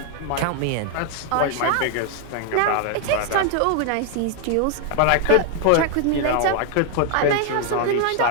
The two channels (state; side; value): different; both; correlation 0.00